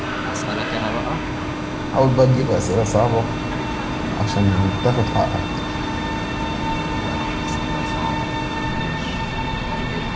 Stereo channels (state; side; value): identical; both; correlation 1.00